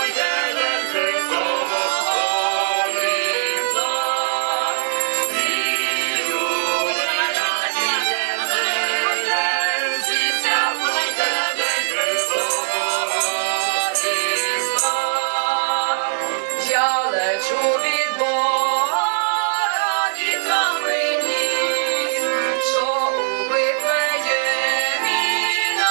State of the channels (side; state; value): left; silent; 62 dB below the other